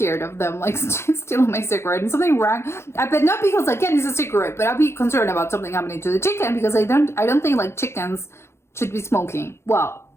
of them like stealing my cigarette and something wrong. But not because again it's a cigarette, but I'd be concerned about something happening to the chicken because I don't think like chickens should be smoking. Well,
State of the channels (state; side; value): late; right; 0.13 ms